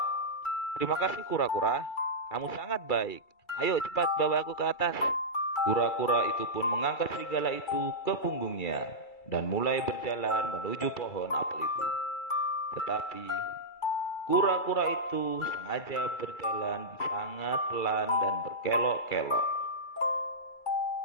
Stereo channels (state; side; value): late; right; 2.3 ms